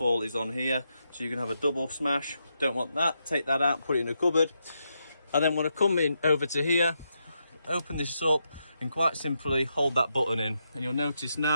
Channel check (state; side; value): inverted; both; correlation -0.83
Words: is on here, so you can have a double smash. Don't want that, take that out, put it in a cupboard. I then want to come in over to here, open this up, and quite simply hold that button in, and you'll notice